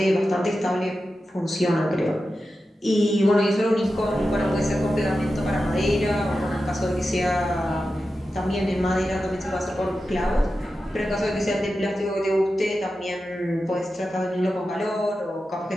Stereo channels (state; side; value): normal; both; correlation 0.92